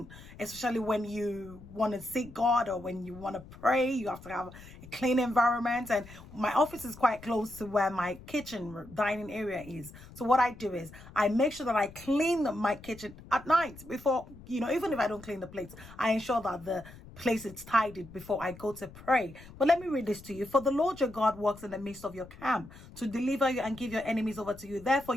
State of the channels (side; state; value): left; noise; rumble, 18 dB below the sound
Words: especially when you want to seek God or when you want to pray. You have to have a clean environment, and my office is quite close to where my kitchen dining area is. So what I do is I make sure that I clean my kitchen at night before, even if I don't clean the plates, I ensure that the place is tidied before I go to pray. But let me read this to you. For the Lord your God walks in the midst of your camp to deliver you and give your enemies over to you. Therefore